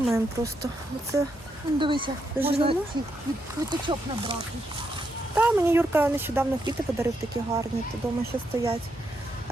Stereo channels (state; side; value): normal; both; correlation 0.80